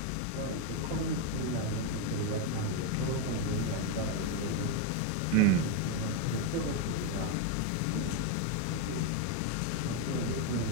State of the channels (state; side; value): different; both; correlation 0.02